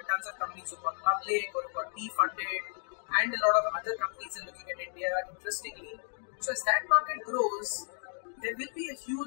tons of companies who've gone public or who've got P-funded, and a lot of other companies are looking at India interestingly. So as that market grows, there will be a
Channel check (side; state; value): right; silent; 56 dB below the other